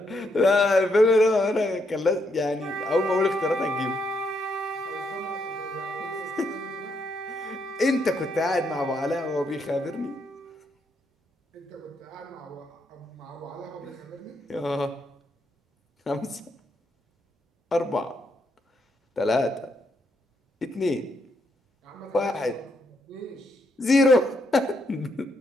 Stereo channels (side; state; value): both; normal; correlation 0.77